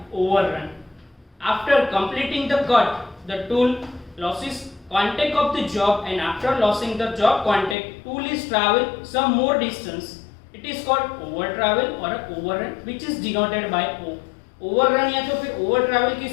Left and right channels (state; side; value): drops out; right; at 7.8 s